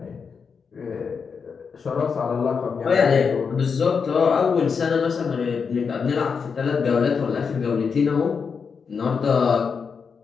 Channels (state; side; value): quieter; right; 5.8 dB